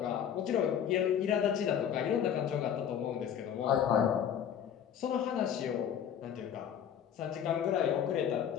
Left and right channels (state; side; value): quieter; right; 8.9 dB